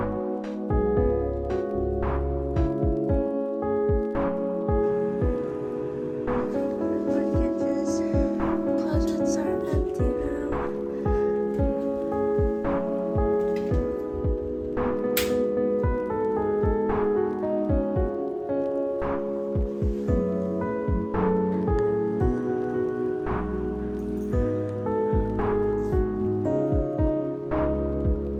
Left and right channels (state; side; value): identical; both; correlation 1.00